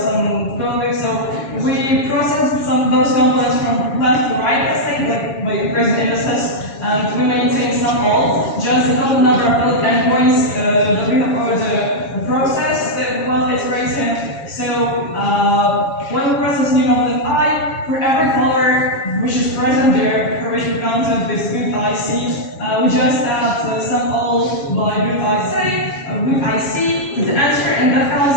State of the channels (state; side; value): late; right; 7.2 ms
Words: coding. So we process some of those components from left to right, let's say, like by increasing indices, and we maintain some all, just the total number of valid endpoints that we have already processed while iterating. So when we process new component I, for every color which is present there, for which we counted this root IC, we just add sum all by root IC to the answer, and that